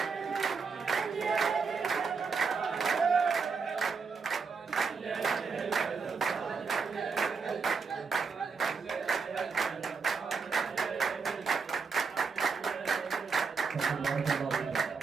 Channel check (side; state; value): left; quieter; 5.2 dB